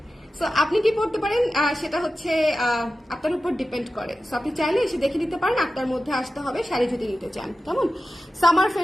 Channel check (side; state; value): both; normal; correlation 0.94